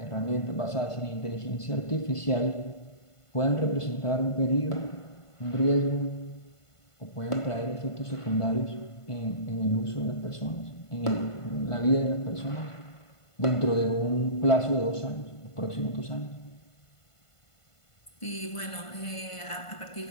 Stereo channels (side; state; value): right; late; 1.5 ms